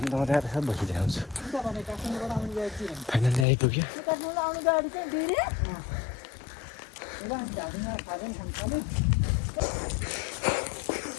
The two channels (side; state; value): right; drops out; at 3.5 s